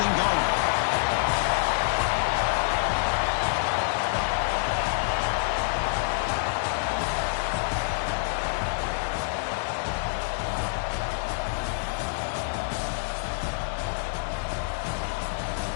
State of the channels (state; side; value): silent; right; 60 dB below the other